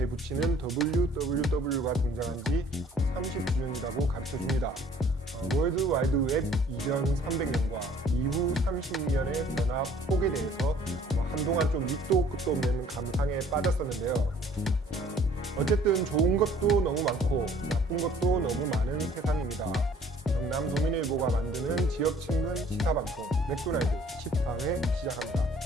붙이는 www가 등장한 지 30주년이라고 가르쳐줍니다. 월드와이드웹 이전 300년과 이후 30년의 변화 폭에 대해서 한동안 좀 밑도 끝도 없는 감상에 빠졌었는데요. 어쨌든 좋은 것도 너무 많고 나쁜 것도 너무 많은 세상입니다. 경남 도민일보가 만드는 지역친근 시사방송 맥도날드 10방을 시작합니다.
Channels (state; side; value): normal; both; correlation 0.56